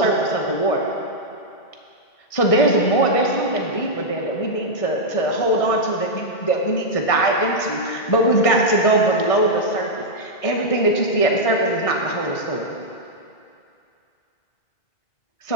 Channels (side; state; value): right; late; 1.6 ms